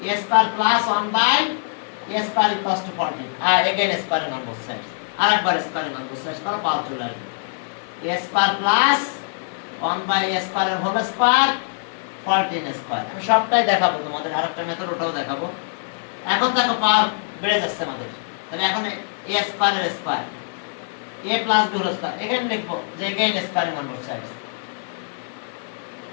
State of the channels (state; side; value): silent; right; 60 dB below the other